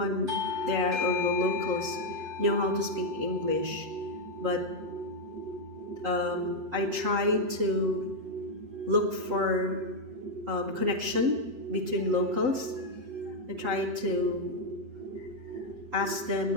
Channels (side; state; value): left; late; 8.0 ms